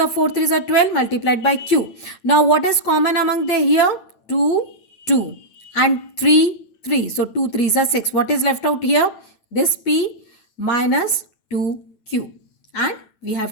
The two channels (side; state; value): right; late; 9.0 ms